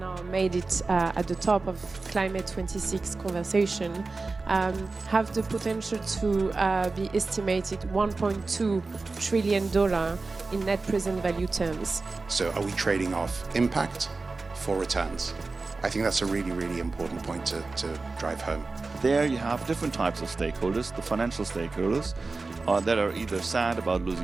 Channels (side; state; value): left; quieter; 3.8 dB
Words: made it at the top of Climate 26 conversation have the potential to be estimated $1.2 trillion in net present value terms. So are we trading off impact for returns? I think that's a really, really important point to drive home. There you have different types of stakeholders, the financial stakeholders that are either sad about